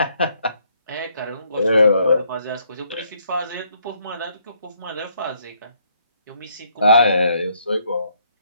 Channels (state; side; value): inverted; both; correlation -0.70